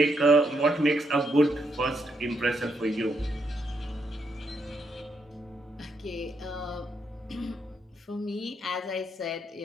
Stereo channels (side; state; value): both; normal; correlation 0.78